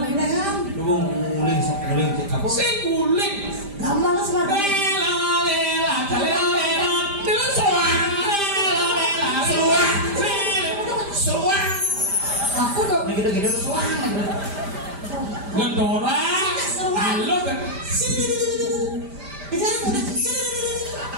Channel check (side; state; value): left; late; 5.0 ms